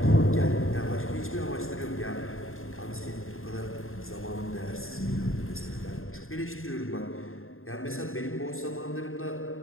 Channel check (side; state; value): right; late; 0.61 ms